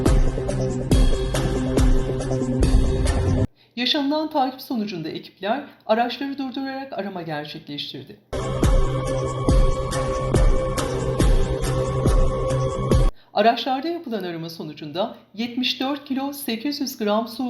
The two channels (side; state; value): both; identical; correlation 1.00